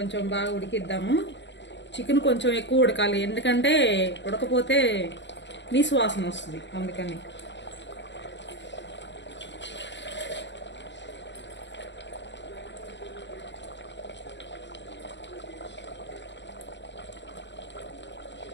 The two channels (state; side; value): late; right; 0.52 ms